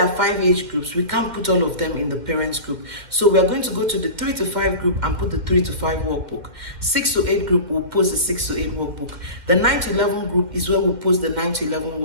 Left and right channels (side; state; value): left; late; 2.0 ms